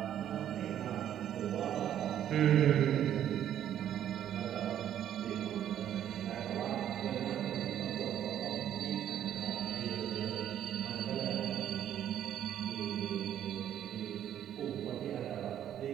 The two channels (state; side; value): quieter; left; 10.6 dB